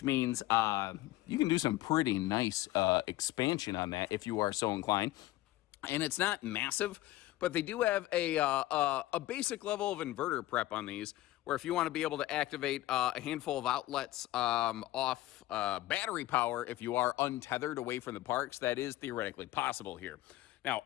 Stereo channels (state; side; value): quieter; right; 16.3 dB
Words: means you can do some pretty nice expansion on that if you are so inclined. And it's not massive, but they do have a basic level of inverter prep on these, where if you want to be able to activate a handful of outlets off battery power, if you are untethered away from the parks, that is theoretically possible here. Now,